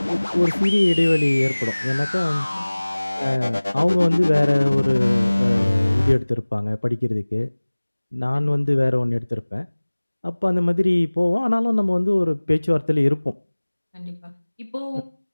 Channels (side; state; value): both; inverted; correlation -1.00